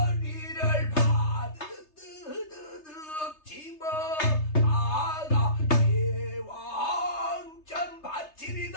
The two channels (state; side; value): late; right; 3.3 ms